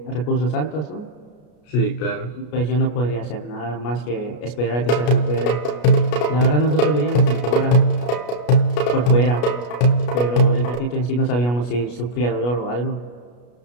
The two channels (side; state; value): right; late; 33 ms